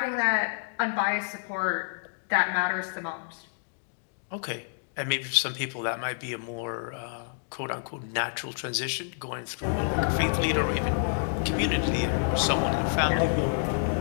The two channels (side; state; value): right; silent; digital silence